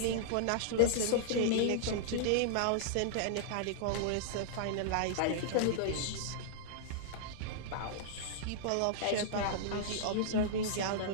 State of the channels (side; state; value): both; different; correlation -0.02